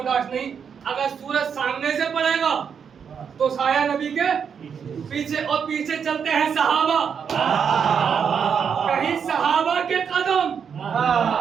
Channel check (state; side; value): quieter; left; 7.0 dB